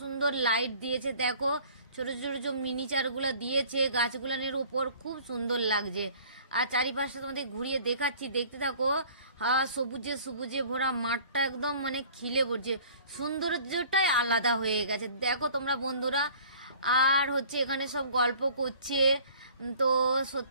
সুন্দর লাইট দিয়েছে, দেখো ছোট ছোট ছোট মিনিচারগুলো দিয়েছে গাছগুলানের উপর, খুব সুন্দর লাগছে। আর চারিপাশটা তোমাদের ঘুরিয়ে দেখাচ্ছি, দেখতে থাকো। সবুজে সবুজে ভরা মাঠটা একদম মানে খিলে পড়ছে, সৌন্দর্যটাই আলাদা হয়ে গেছে, দেখো তোমরা বন্ধুরা। আর হচ্ছে এখানে সব গল্প করছে। তো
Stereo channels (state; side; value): inverted; both; correlation -0.50